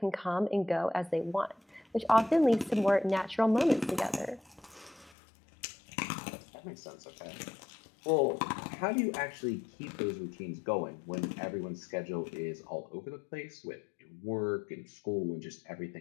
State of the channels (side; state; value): right; drops out; at 5.2 s